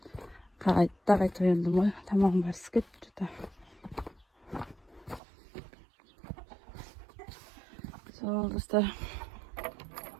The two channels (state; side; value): drops out; left; at 5.2 s